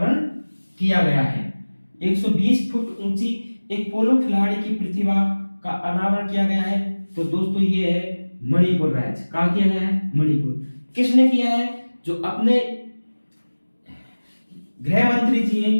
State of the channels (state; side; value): inverted; both; correlation -1.00